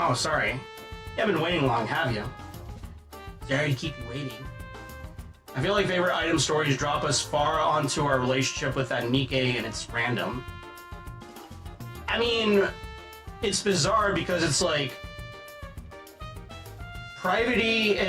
sorry. You haven't been waiting long, have you? Sorry to keep you waiting. I feel like favorite item stories drop us far onto our relationship with that Nikke, and it's random. I mean, it's bizarre because it's like Privity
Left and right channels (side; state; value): both; identical; correlation 1.00